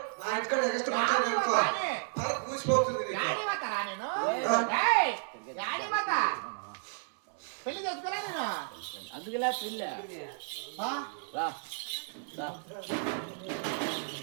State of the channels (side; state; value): left; silent; 56 dB below the other